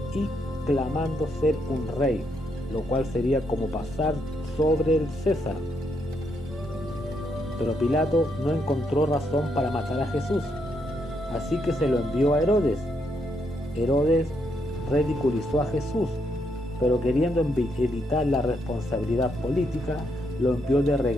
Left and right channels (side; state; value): both; normal; correlation 0.77